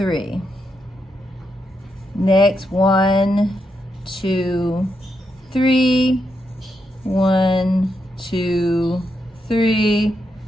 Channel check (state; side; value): normal; both; correlation 0.82